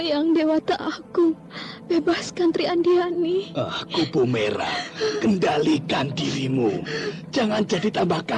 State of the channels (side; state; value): both; identical; correlation 1.00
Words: yang dewata aku. Bebaskan Tri Andiani. Kupu Merah, kendalikan dirimu. Jangan jadi tambah